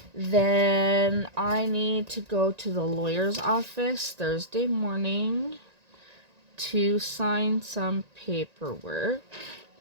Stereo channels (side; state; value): left; late; 1.9 ms